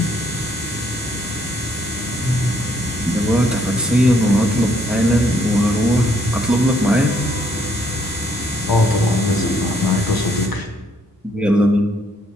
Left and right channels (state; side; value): normal; both; correlation 0.68